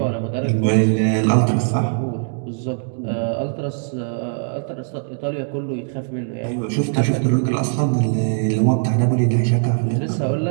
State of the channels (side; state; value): left; silent; digital silence